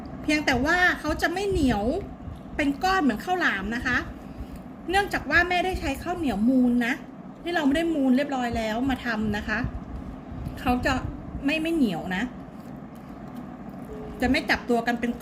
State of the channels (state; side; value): identical; both; correlation 1.00